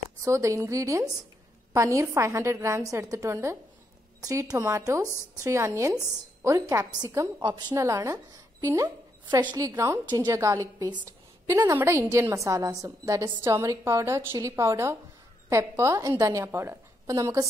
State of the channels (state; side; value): normal; both; correlation 0.79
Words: So the ingredients: paneer 500 grams എടുത്തിട്ടുണ്ട്, 3 tomatoes, 3 onions, ഒരു ക്യാപ്സിക്കം ഓപ്ഷണൽ ആണ്, പിന്നെ freshly ground ginger garlic paste, പിന്നെ നമ്മുടെ ഇന്ത്യൻ മസാലാസും, that is turmeric powder, chilli powder, pepper and dhania powder. അപ്പൊ നമുക്ക്